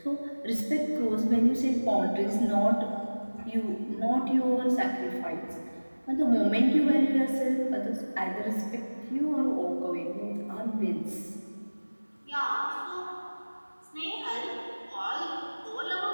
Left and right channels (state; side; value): inverted; both; correlation -1.00